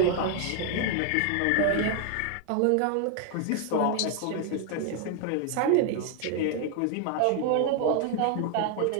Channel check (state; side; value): different; both; correlation 0.00